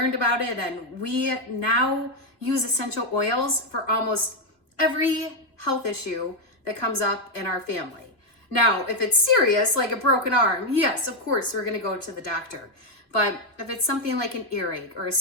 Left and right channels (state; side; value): late; right; 3.0 ms